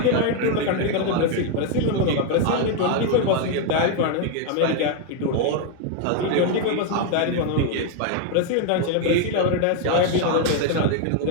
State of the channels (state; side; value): different; both; correlation 0.00